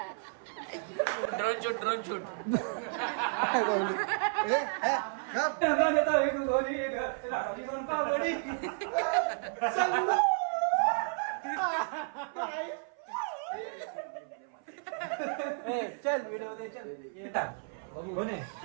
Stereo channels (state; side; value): silent; left; 56 dB below the other